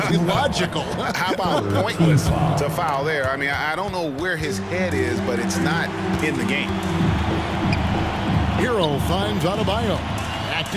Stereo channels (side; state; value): both; identical; correlation 1.00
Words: logical. How about pointless to foul there? I mean, I don't know where his head is, but it's not in the game. Hero finds Adebayo. Back